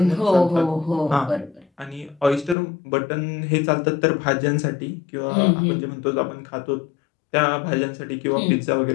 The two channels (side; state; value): right; drops out; at 2.6 s